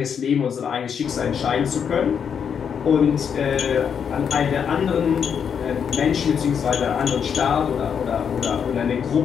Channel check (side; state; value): right; quieter; 7.3 dB